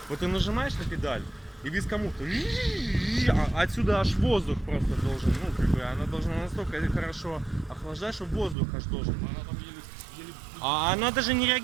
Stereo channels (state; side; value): drops out; left; at 8.6 s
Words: Вот ты нажимаешь на педаль, и вискомуфта... Отсюда аж воздух просто должен... Ну, как бы, она должна настолько хорошо охлаждать, что воздух аж должен. Она там еле... А она даже не